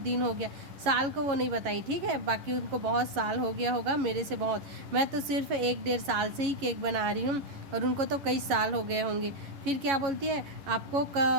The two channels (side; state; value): left; late; 11 ms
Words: हो गया, साल को वो नहीं बताई, ठीक है, बाकी उनको बहुत साल हो गया होगा मेरे से बहुत, मैं तो सिर्फ 1-1.5 साल से ही केक बना रही हूँ और उनको तो कई साल हो गए होंगे। फिर क्या बोलती है आपको